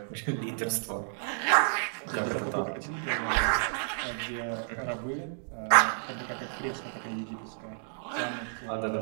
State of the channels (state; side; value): silent; left; digital silence